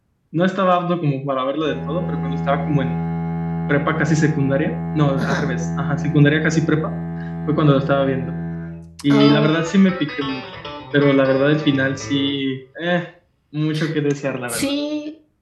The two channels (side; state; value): both; identical; correlation 1.00